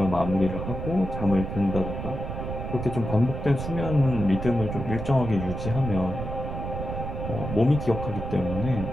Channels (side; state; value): right; noise; rumble, 5 dB below the sound